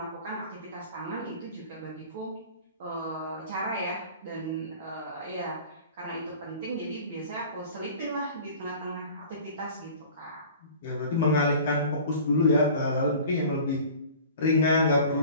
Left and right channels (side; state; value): both; inverted; correlation -0.43